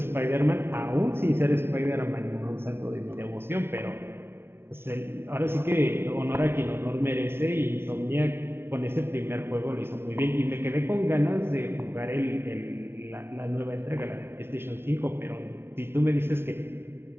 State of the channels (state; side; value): late; left; 0.12 ms